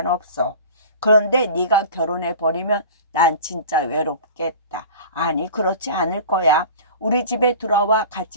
그런데 네가 결혼해버리면 난 진짜 외롭겠다. 아니, 그렇지 않을 거야. 우리 집에 들어와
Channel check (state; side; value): inverted; both; correlation -0.39